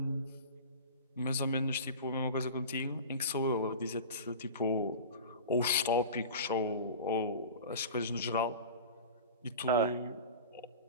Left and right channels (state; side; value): inverted; both; correlation -0.34